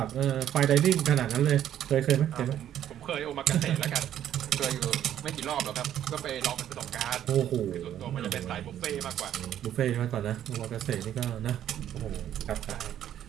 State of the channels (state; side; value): quieter; left; 10.9 dB